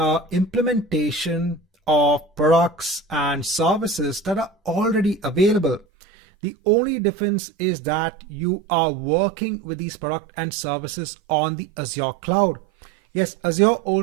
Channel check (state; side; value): drops out; left; at 5.9 s